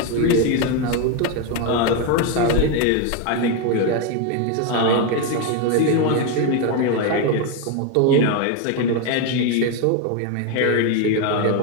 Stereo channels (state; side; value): different; both; correlation 0.02